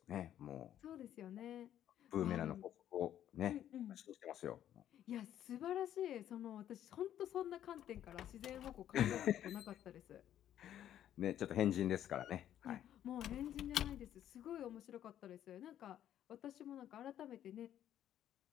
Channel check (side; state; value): right; quieter; 11.1 dB